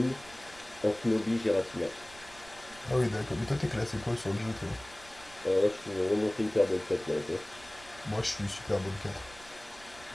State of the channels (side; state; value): right; noise; rumble, 22 dB below the sound